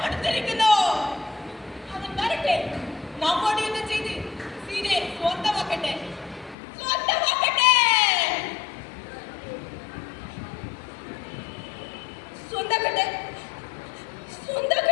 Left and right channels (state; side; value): drops out; right; at 6.6 s